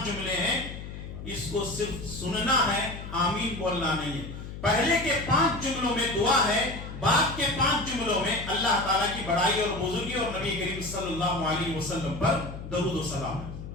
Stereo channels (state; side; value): noise; left; hum, 10 dB below the sound